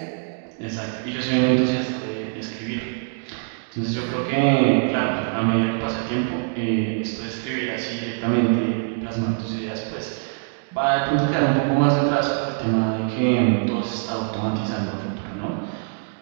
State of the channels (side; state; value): left; silent; 63 dB below the other